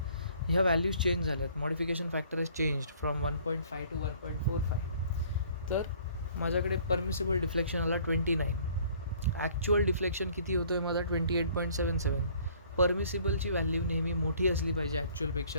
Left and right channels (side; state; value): both; inverted; correlation -0.56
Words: ह्या व्हॅल्यूज चेंज झाल्यात. Modification factor is changed from 1.5 to 1.45. तर माझ्याकडे परमिसिबल डिफ्लेक्शन आला 29. ॲक्च्युअल डिफ्लेक्शन किती होतो आहे माझा? 28.77. परमिसिबलची व्हॅल्यू नेहमी मोठी असली पाहिजे